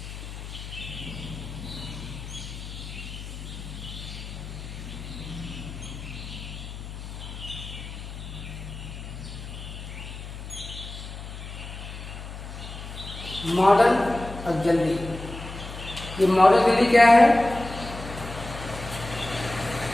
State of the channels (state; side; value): noise; left; hum, 10 dB below the sound